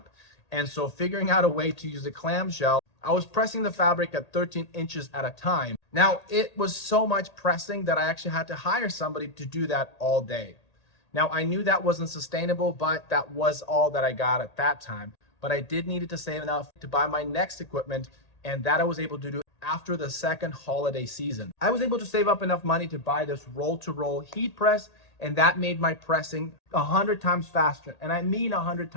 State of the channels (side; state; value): right; late; 1.8 ms